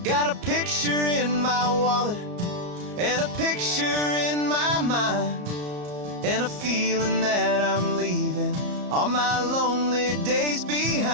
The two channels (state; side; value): late; left; 34 ms